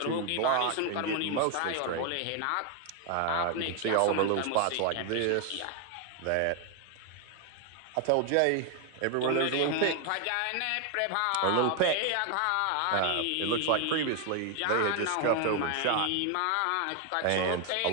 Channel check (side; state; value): both; different; correlation 0.01